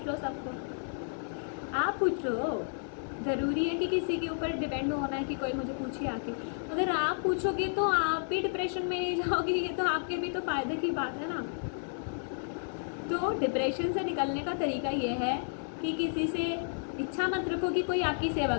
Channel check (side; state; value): right; silent; 57 dB below the other